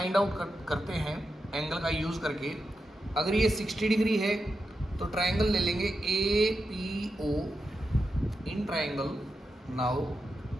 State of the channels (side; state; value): both; normal; correlation 0.88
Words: आउट करते हैं एंगल का यूज़ करके। अगर ये 60 डिग्री है तो ट्रायंगल ले लेंगे APO in triangle. Now